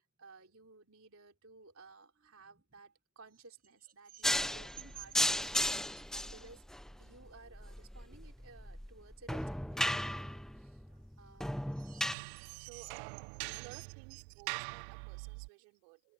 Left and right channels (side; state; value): left; drops out; at 12.2 s